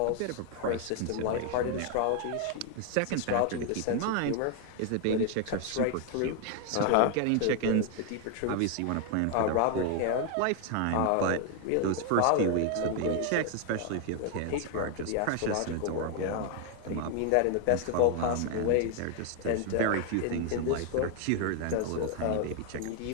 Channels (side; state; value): both; different; correlation 0.00